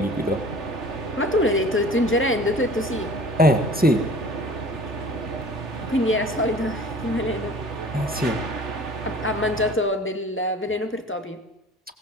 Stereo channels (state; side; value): normal; both; correlation 0.45